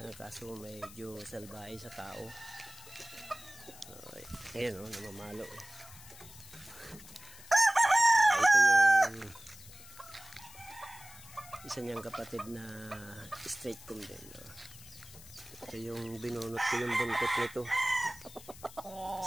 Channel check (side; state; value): left; noise; hiss, 18 dB below the sound